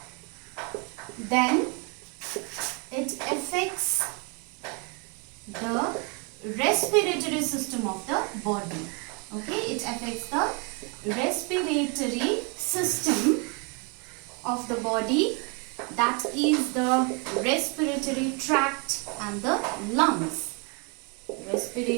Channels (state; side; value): quieter; left; 34.0 dB